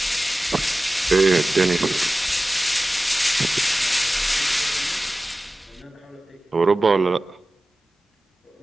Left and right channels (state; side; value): normal; both; correlation 0.96